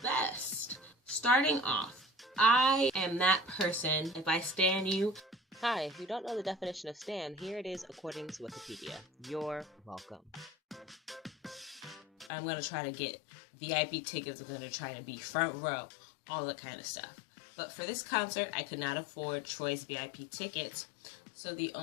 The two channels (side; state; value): right; drops out; at 12.3 s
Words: best. Starting off, I am that person, if I stan you. Hi, if you don't know the definition of stan, here it is according to Wikipedia. You're welcome. I'm going to try to get VIP tickets. I'm going to try to be front row, all that kind of stuff. But for this concert, I could not afford Troye's VIP tickets, so the